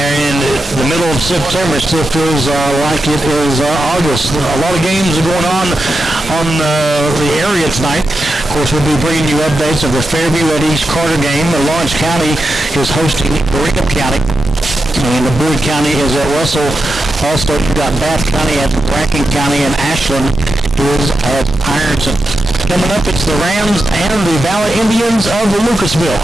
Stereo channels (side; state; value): both; normal; correlation 0.88